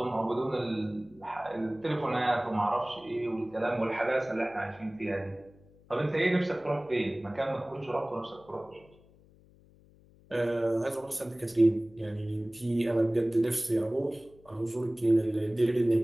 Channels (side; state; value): left; noise; hum, 27 dB below the sound